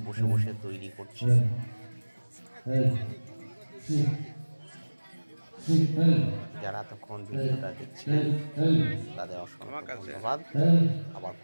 বসে বসে তৈরি করছে। যারা এতক্ষণ ভিডিওটা দেখছিলেন তাদের অসংখ্য ধন্যবাদ। আবার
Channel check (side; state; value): both; inverted; correlation -1.00